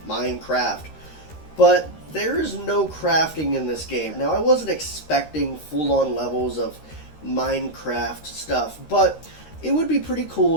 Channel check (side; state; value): right; late; 13 ms